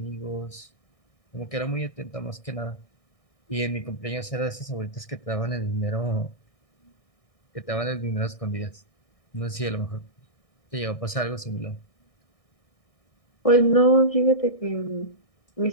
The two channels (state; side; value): late; right; 1.6 ms